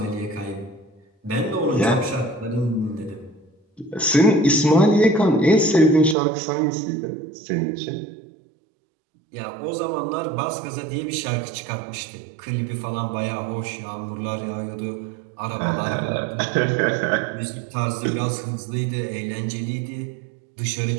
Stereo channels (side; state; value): left; drops out; at 6.2 s